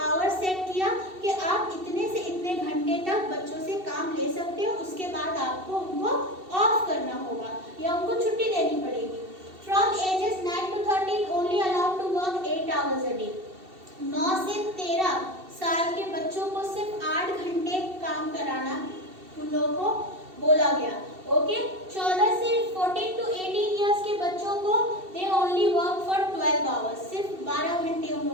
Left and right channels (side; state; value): left; late; 2.7 ms